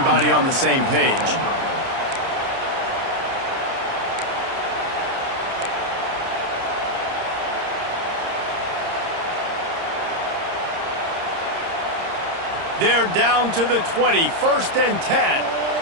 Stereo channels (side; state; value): left; late; 30 ms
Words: on the same page. They're down to the 20, 1st and 10.